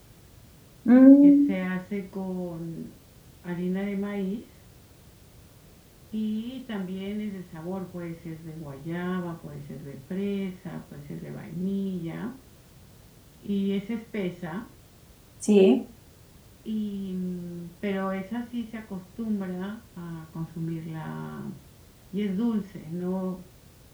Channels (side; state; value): both; identical; correlation 1.00